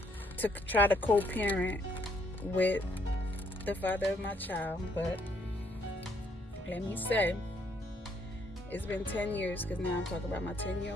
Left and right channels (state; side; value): normal; both; correlation 0.70